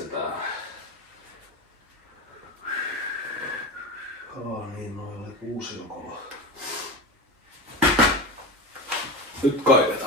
Niin, noin oli kuusiokolo. Nyt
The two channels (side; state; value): both; normal; correlation 0.25